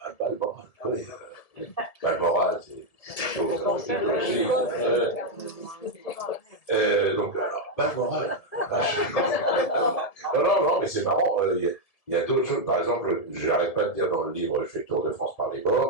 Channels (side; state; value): right; late; 1.7 ms